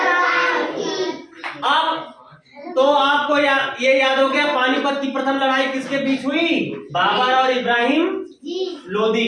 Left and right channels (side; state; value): both; identical; correlation 1.00